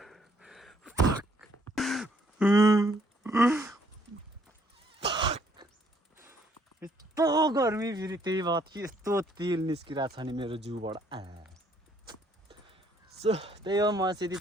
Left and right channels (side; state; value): both; normal; correlation 0.66